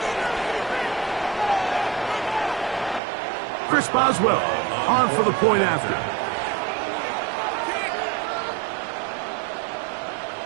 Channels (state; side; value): drops out; left; at 3.0 s